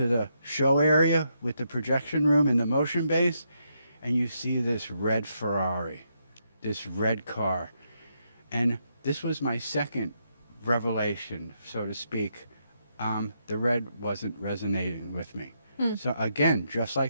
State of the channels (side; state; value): both; inverted; correlation -0.79